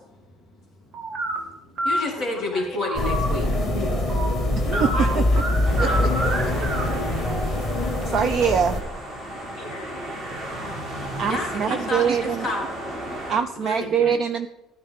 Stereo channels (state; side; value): normal; both; correlation 0.66